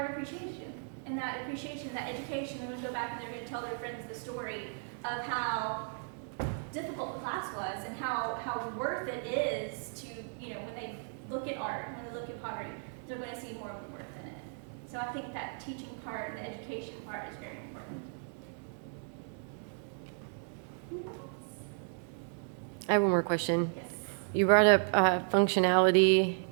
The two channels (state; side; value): silent; left; 55 dB below the other